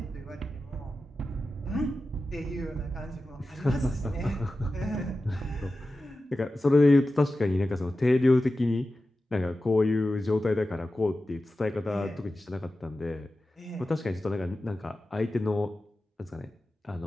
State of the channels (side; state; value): both; normal; correlation 0.93